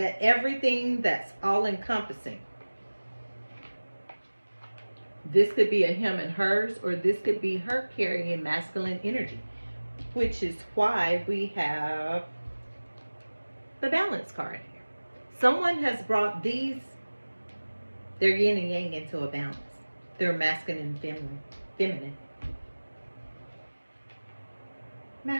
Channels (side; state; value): both; inverted; correlation -1.00